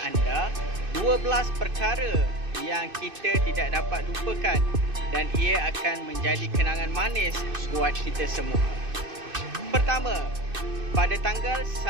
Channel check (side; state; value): left; late; 2.6 ms